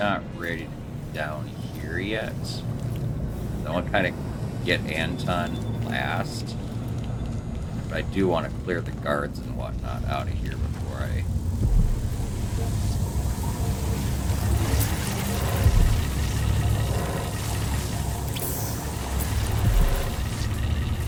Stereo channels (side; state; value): both; identical; correlation 1.00